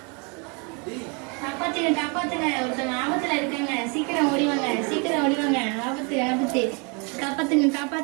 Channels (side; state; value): left; quieter; 33.0 dB